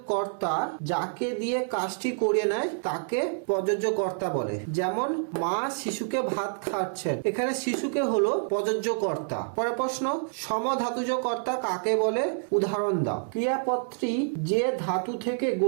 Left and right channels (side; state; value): left; silent; digital silence